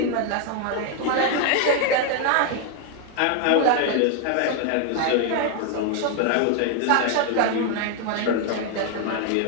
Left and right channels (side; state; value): both; different; correlation 0.01